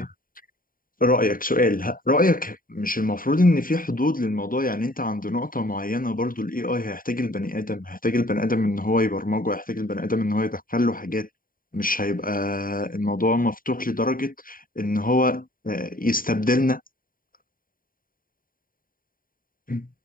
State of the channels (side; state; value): right; late; 0.41 ms